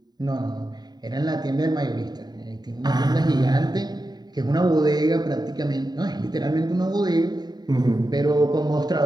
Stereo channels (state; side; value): late; left; 0.20 ms